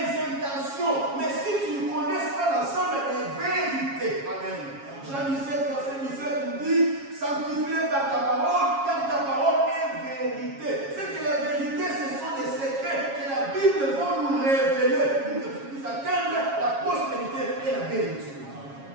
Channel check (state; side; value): late; left; 7.3 ms